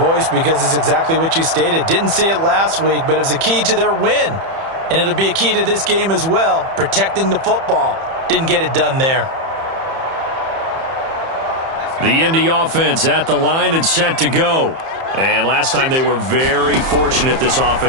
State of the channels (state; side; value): late; left; 30 ms